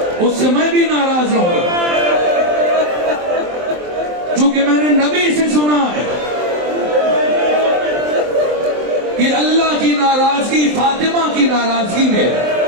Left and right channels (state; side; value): late; left; 23 ms